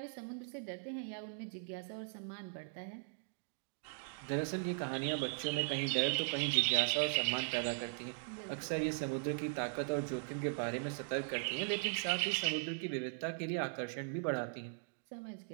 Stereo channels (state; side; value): silent; left; digital silence